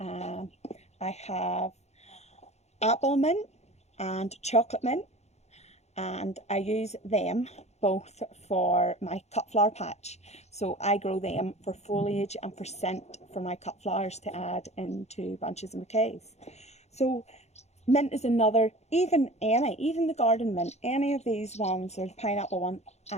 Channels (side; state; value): right; late; 0.32 ms